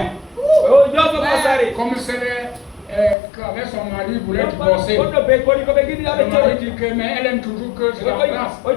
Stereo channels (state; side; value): drops out; right; at 3.2 s